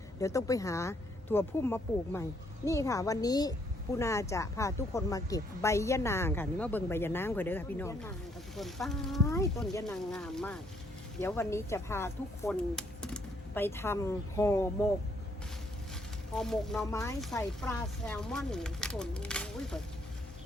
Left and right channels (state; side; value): normal; both; correlation 0.69